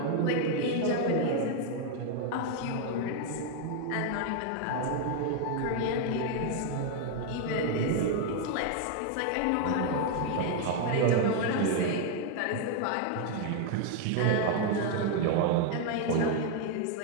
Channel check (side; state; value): both; different; correlation 0.00